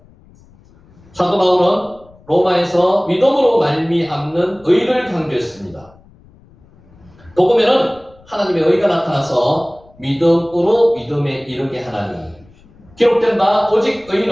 사도 바울은 로마에서 믿음으로 말미암는 의를 강조했습니다. 복음에는 하나님의 의가 나타나서 믿음으로 믿음에 이르게 하나니, 기록된 바 오직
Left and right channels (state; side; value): noise; left; rumble, 27 dB below the sound